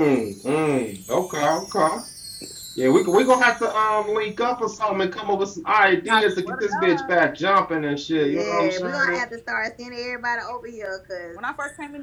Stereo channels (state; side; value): identical; both; correlation 1.00